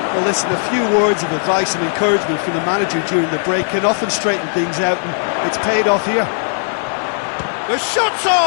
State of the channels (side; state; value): right; silent; digital silence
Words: Well, listen, a few words of advice and encouragement from the manager during the break can often straighten things out, and it's paid off here. The shot's